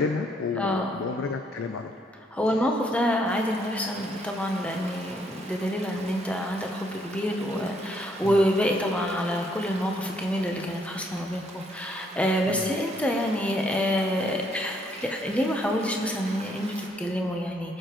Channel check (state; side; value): normal; both; correlation 0.70